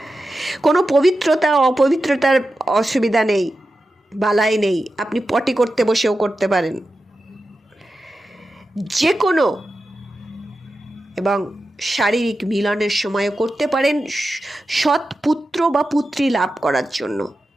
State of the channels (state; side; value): normal; both; correlation 0.91